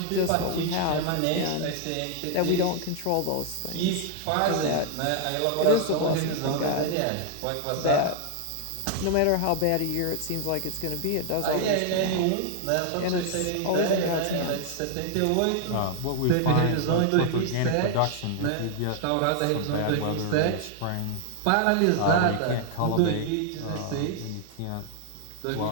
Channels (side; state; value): both; different; correlation 0.00